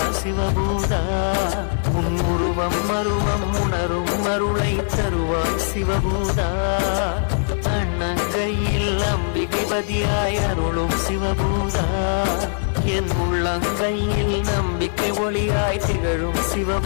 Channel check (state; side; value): silent; right; 65 dB below the other